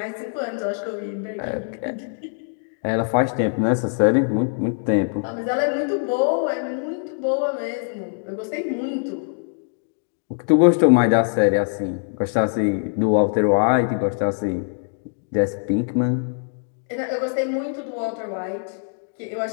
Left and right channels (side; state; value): right; silent; digital silence